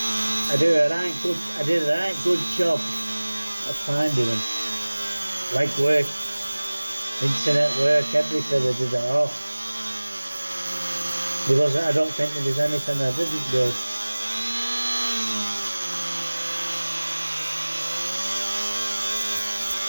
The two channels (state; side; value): inverted; both; correlation -1.00